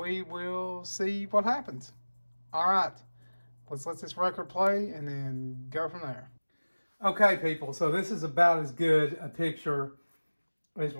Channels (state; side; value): inverted; both; correlation -1.00